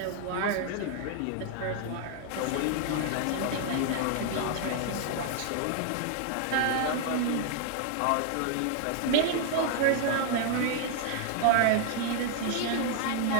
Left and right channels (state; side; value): different; both; correlation 0.00